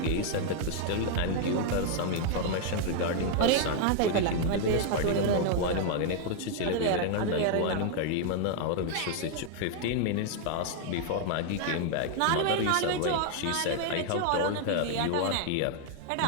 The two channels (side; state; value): both; different; correlation 0.00